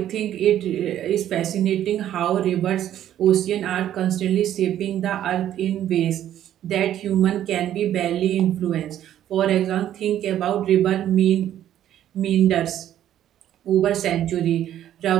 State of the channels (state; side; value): quieter; left; 11.5 dB